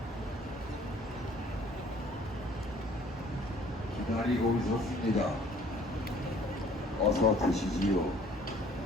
기다리고 있었습니다. 어서 드시지요.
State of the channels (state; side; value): normal; both; correlation 0.56